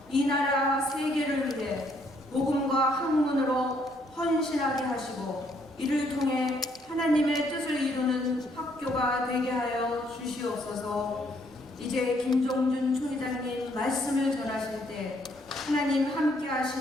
이 나라 세계를 위해 복음과 학문으로 헌신하게 하시고 이를 통해 하나님의 뜻을 이루는 학교가 되게 하여 주시옵소서. 이제 김종준 총회장님 말씀을 전하실 때 하나님 함께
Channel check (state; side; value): normal; both; correlation 0.69